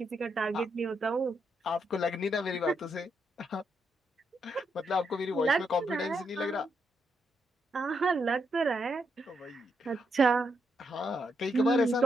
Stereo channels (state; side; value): normal; both; correlation 0.80